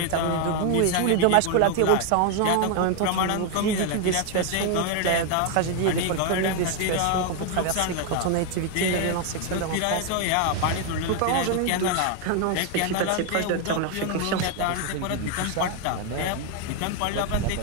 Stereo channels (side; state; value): both; different; correlation 0.00